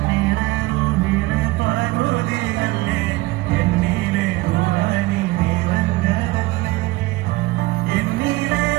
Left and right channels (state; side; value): quieter; left; 20.1 dB